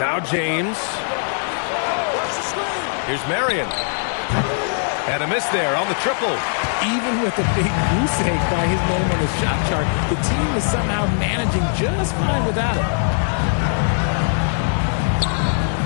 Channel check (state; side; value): silent; right; digital silence